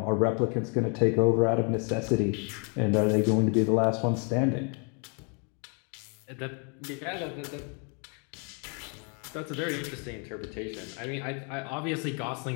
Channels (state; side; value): quieter; right; 37.2 dB